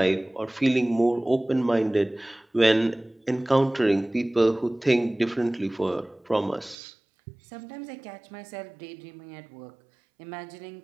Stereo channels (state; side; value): drops out; left; at 6.8 s